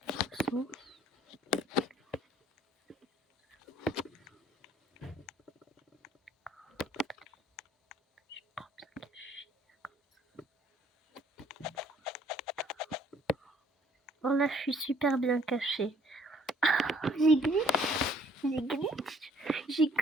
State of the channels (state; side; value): normal; both; correlation 0.59